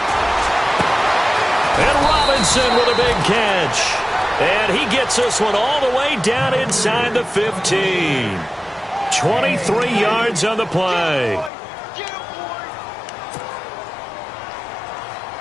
And Robinson with a big catch. And he gets this one all the way down inside the 15. 23 yards on the play.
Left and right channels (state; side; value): drops out; right; at 11.5 s